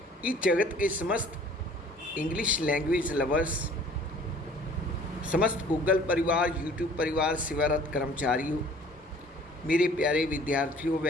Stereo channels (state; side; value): normal; both; correlation 0.52